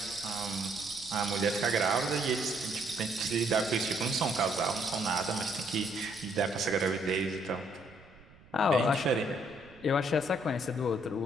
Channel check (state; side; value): noise; right; rumble, 24 dB below the sound